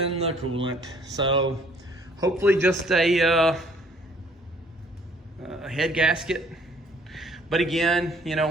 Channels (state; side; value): normal; both; correlation 0.60